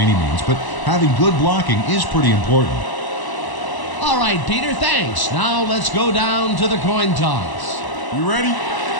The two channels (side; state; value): right; late; 1.0 ms